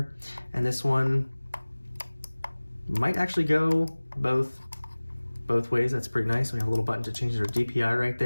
and this one might actually go both ways. That's pretty nice. We have a little button to change our DPI right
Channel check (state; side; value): inverted; both; correlation -1.00